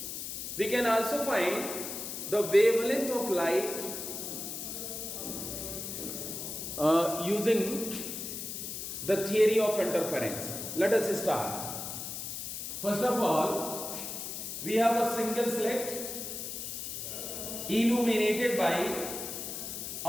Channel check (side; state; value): left; noise; hiss, 6 dB below the sound